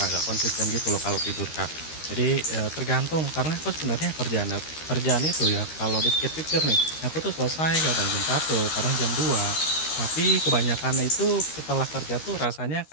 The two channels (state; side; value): late; right; 13 ms